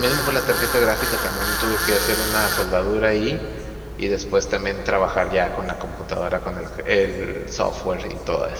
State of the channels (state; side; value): identical; both; correlation 1.00